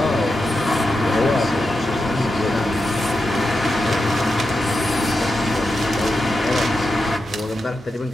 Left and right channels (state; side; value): normal; both; correlation 0.88